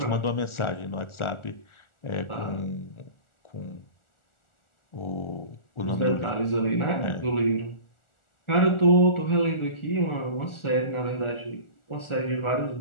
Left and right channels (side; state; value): right; late; 1.4 ms